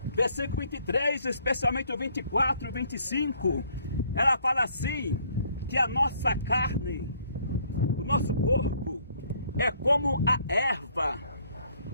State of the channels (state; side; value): inverted; both; correlation -0.64